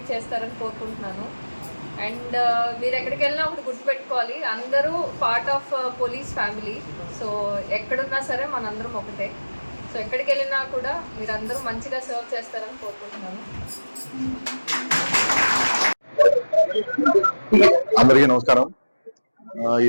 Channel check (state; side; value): inverted; both; correlation -1.00